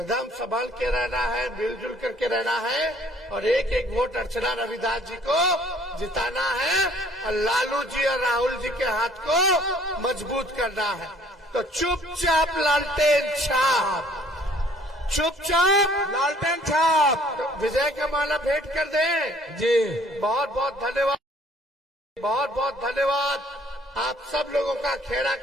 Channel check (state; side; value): normal; both; correlation 0.58